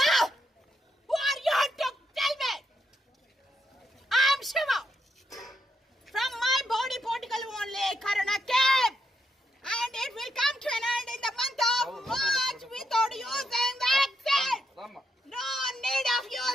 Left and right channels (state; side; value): normal; both; correlation 0.81